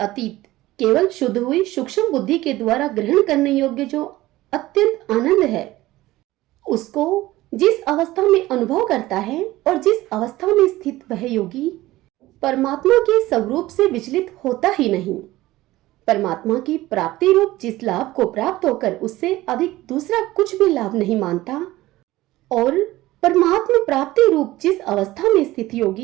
केवल शुद्ध हुई सूक्ष्म बुद्धि के द्वारा ग्रहण करने योग्य जो अत्यंत आनंद है, उसको जिस अवस्था में अनुभव करता है और जिस अवस्था में स्थित वह योगी परमात्मा के स्वरूप से विचलित होता ही नहीं। परमात्मा की प्राप्ति रूप जिस लाभ को प्राप्त होकर उससे अधिक दूसरा कुछ भी लाभ नहीं मानता और परमात्मा प्राप्ति रूप जिस अवस्था में स्थित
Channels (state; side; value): quieter; left; 17.2 dB